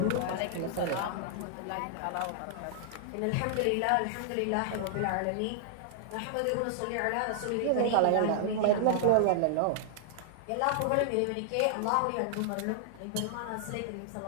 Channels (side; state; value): both; different; correlation -0.01